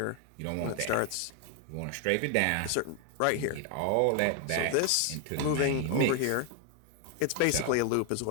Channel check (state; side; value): different; both; correlation 0.00